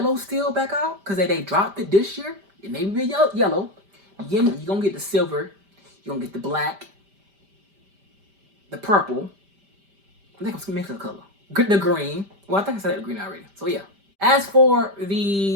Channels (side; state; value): left; late; 5.1 ms